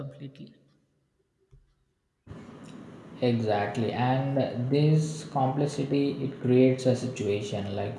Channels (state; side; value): identical; both; correlation 1.00